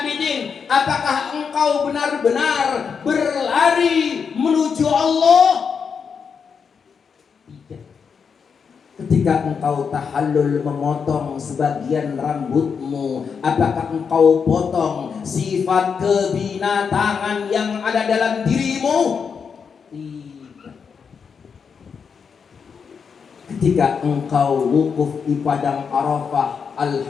apakah engkau benar-benar berlari menuju Allah? Tidak. Ketika engkau tahallul memotong sebagian rambutmu, apakah engkau potong sifat kebinatangan yang ada dalam dirimu? Tidak. Ketika engkau wukuf di padang Arafah,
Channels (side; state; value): right; quieter; 6.2 dB